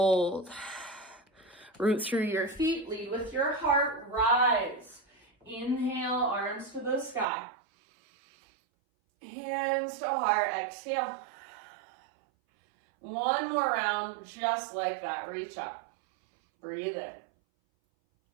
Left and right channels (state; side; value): drops out; left; at 7.2 s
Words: Root through your feet. Lead with your heart. Rise. Inhale, arms to the sky. Hands to heart. Exhale. One more round, just like that. Reach up. Breathe in.